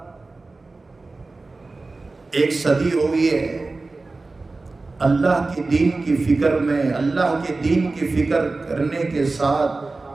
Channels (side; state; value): left; quieter; 3.5 dB